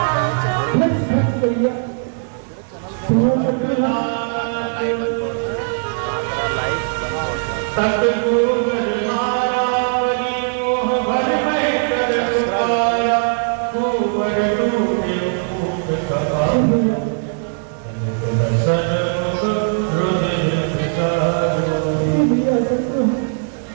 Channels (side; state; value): left; silent; digital silence